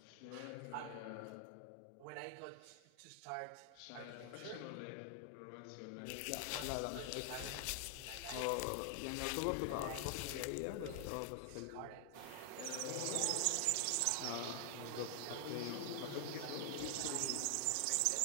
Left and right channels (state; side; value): different; both; correlation 0.00